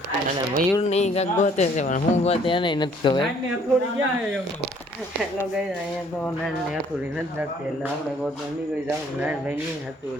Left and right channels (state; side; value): normal; both; correlation 0.60